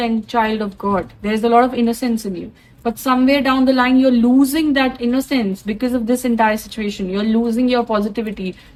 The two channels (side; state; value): both; identical; correlation 1.00